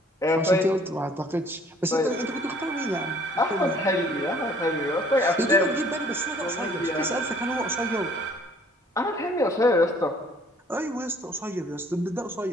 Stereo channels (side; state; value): both; normal; correlation 0.57